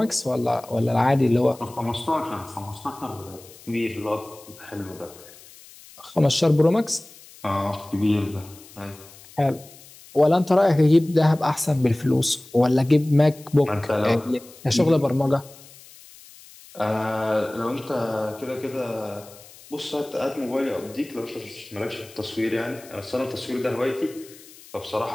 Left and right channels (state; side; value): noise; left; hiss, 21 dB below the sound